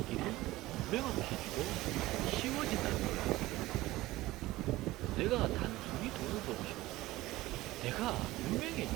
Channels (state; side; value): quieter; left; 17.9 dB